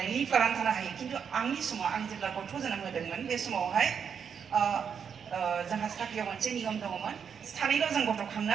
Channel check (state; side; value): quieter; left; 7.1 dB